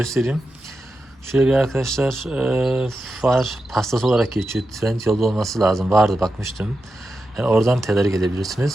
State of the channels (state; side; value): normal; both; correlation 0.89